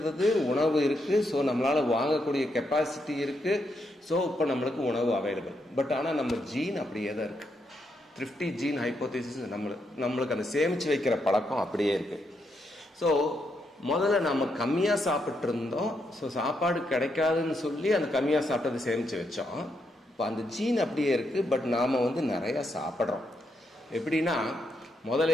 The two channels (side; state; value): both; normal; correlation 0.80